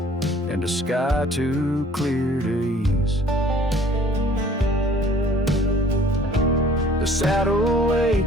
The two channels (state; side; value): normal; both; correlation 0.53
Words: and a sky too clear to ease. The saddle